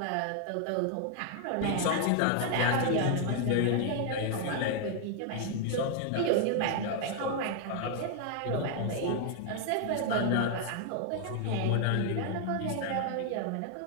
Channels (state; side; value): different; both; correlation 0.00